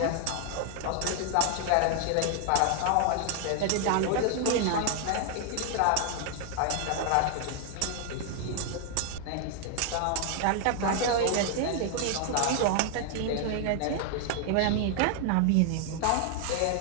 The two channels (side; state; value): both; different; correlation 0.00